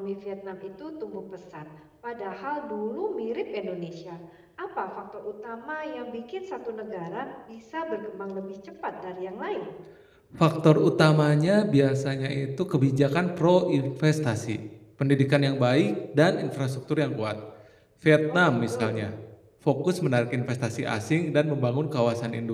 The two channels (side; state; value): both; identical; correlation 1.00